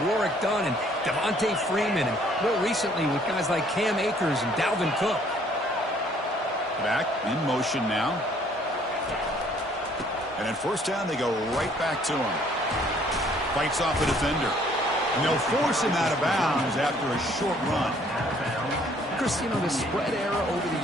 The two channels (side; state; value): both; normal; correlation 0.61